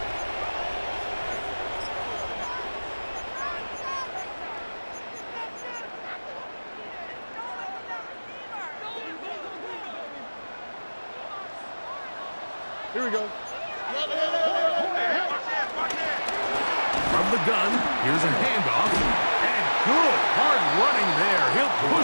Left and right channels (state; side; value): inverted; both; correlation -1.00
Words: Here we go. From the gun, here's a handoff. And good, hard running there. He'll